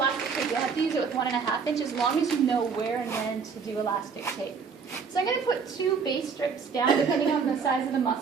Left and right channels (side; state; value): left; quieter; 5.7 dB